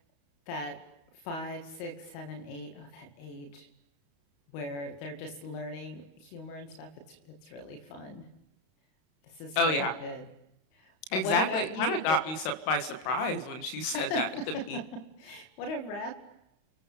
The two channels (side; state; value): right; late; 32 ms